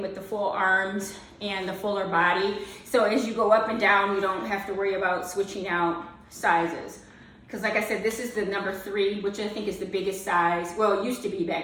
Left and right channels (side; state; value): both; identical; correlation 1.00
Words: with the full arms and the fuller body. So as you go up and down, you don't have to worry about switching out sizes. Because like I said, this is the number 3, which I think is the biggest size. Well, it used to be